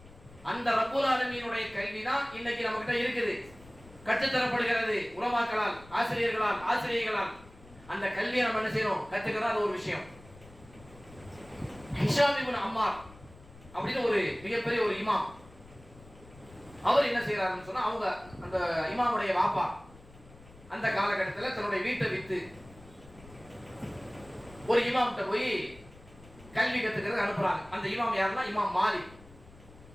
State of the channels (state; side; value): noise; left; rumble, 22 dB below the sound